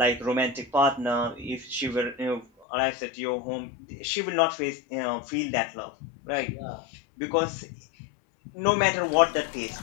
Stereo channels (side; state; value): right; drops out; at 2.7 s